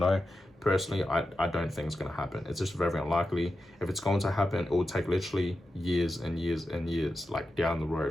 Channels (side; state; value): both; normal; correlation 0.90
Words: Personally, I don't think it's going to happen. It's just very unlikely. If it's going to happen, it will take literally years and years and years, like down the